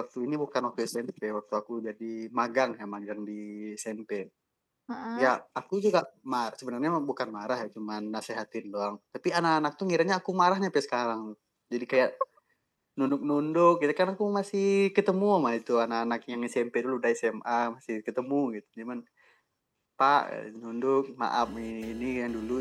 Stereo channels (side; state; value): both; identical; correlation 1.00